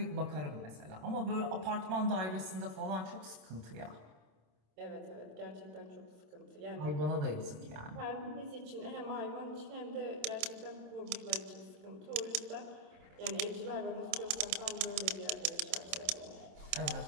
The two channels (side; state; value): left; late; 27 ms